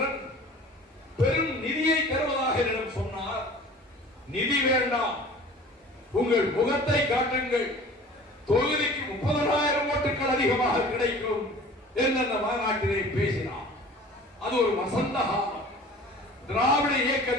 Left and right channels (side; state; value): both; normal; correlation 0.44